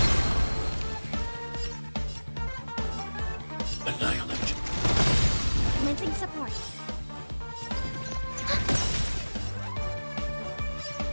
Annihilate. Commencing support.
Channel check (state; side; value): inverted; both; correlation -1.00